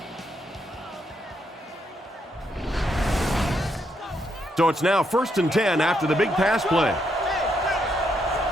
So it's now 1st and 10 after the big pass play.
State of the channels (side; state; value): both; normal; correlation 0.77